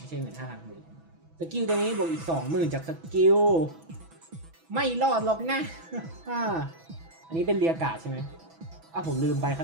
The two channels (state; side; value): late; left; 6.1 ms